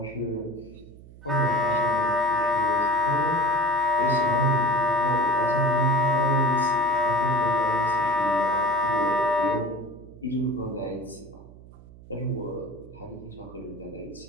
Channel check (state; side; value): noise; right; hum, 20 dB below the sound